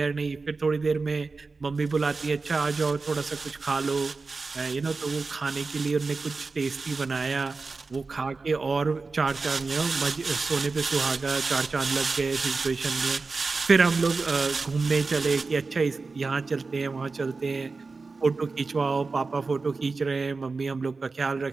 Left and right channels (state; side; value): quieter; left; 4.1 dB